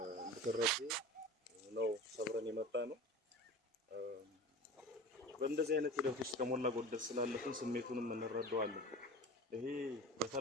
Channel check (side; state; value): both; normal; correlation 0.35